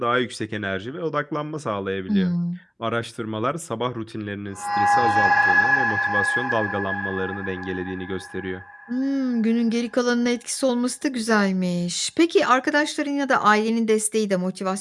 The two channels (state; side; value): identical; both; correlation 1.00